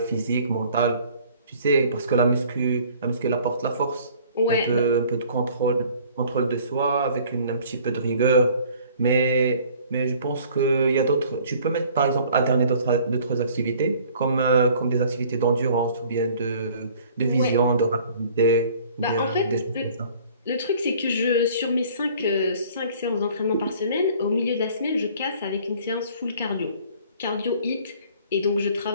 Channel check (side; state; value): both; inverted; correlation -0.53